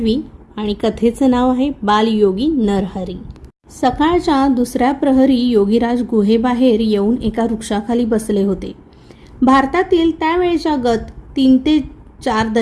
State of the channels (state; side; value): identical; both; correlation 1.00